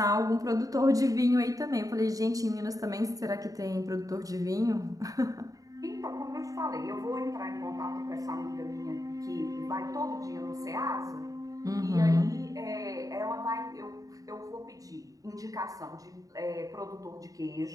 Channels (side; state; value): left; late; 0.17 ms